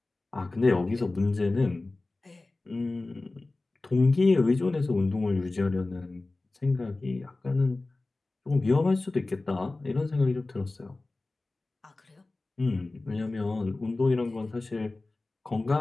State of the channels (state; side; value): quieter; right; 3.2 dB